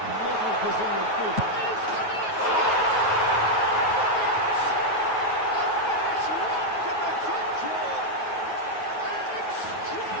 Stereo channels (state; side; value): late; right; 9.3 ms